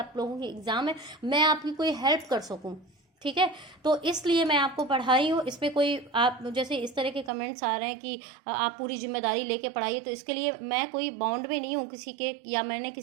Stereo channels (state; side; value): drops out; left; at 7.3 s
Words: लोगों की एग्जाम है, मैं आपकी कोई हेल्प कर सकूँ, ठीक है। तो इसलिए मैं आपको पढ़ाई हूँ। इसमें कोई आप जैसे इस तरह के कमेंट्स आ रहे हैं कि आप पूरी जिम्मेदारी लेके पढ़ाइए, तो इसके लिए मैं कोई बॉन्ड में नहीं हूँ किसी के, या मैंने